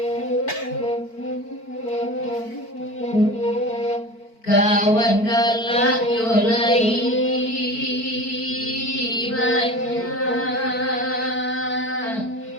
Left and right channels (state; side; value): late; right; 4.5 ms